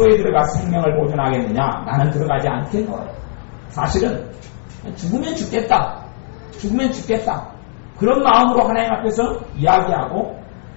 들어가 생명을 보존하겠느냐. 나는 들어가지 않겠노라. 사실은 죽으면 죽겠다. 죽으면 죽겠다. 그런 마음으로 하나님 앞에서 이야기하고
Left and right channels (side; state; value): right; silent; digital silence